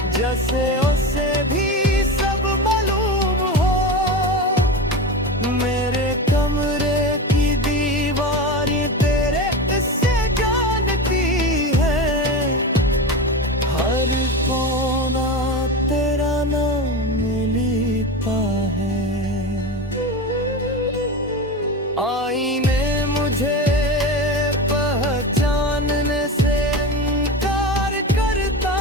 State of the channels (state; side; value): normal; both; correlation 0.24